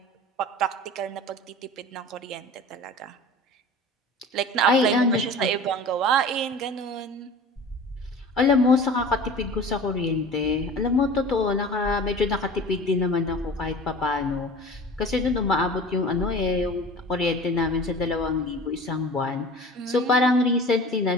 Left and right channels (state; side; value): normal; both; correlation 0.39